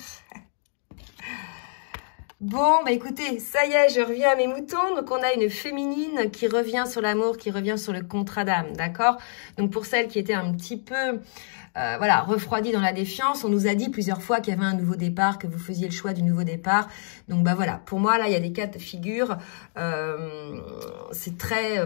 Bon, bah écoutez, ça y est, je reviens à mes moutons. Donc, on a une féminine qui revient sur l'amour, qui revient sur le contrat d'âme, d'accord? Donc, pour celles qui étaient un petit peu, voilà, refroidies dans la défiance, on nous a dit plusieurs fois qu'il y avait un nouveau départ, que vous faisiez le choix du nouveau départ. Donc, bah voilà, pour moi, là, il y a des cas de figure. C'est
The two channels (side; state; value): right; silent; digital silence